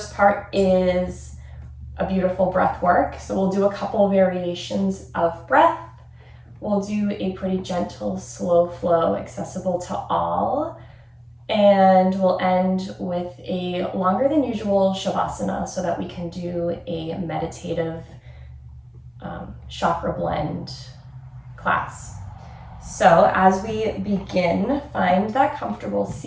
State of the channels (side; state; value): both; identical; correlation 1.00